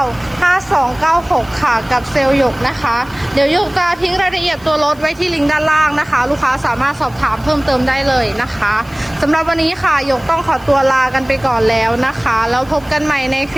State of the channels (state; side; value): noise; left; hiss, 26 dB below the sound